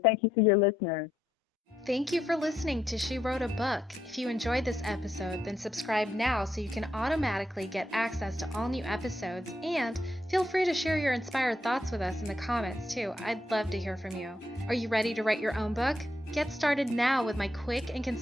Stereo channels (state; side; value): normal; both; correlation 0.79